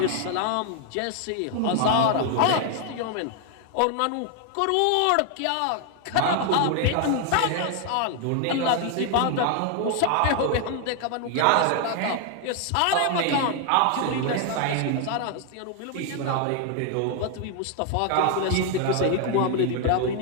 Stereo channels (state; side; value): different; both; correlation 0.00